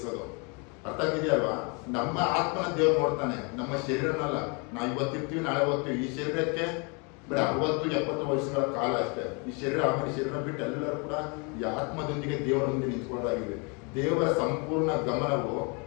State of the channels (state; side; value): quieter; right; 32.9 dB